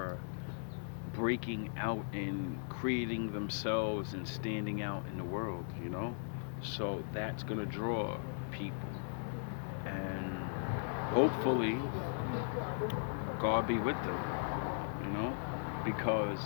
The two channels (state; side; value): silent; right; digital silence